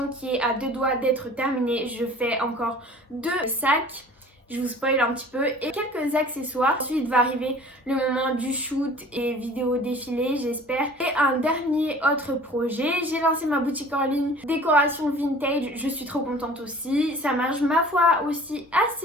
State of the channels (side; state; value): both; normal; correlation 0.47